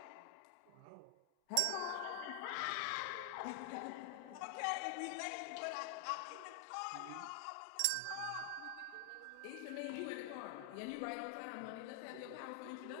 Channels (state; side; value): different; both; correlation 0.00